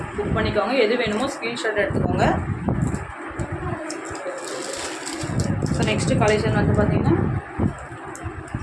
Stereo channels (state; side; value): identical; both; correlation 1.00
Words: புக் பண்ணிக்கோங்க. எது வேணுமோ ஸ்க்ரீன்ஷாட் எடுத்துக்கோங்க. ஸோ நெக்ஸ்ட்டு கலெக்ஷன் வந்து பார்த்திங்கன்னா